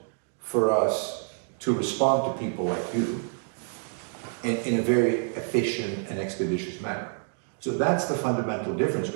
for us to respond to people like you in a very efficient and expeditious manner. So that's the fundamental difference,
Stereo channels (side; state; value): left; silent; 60 dB below the other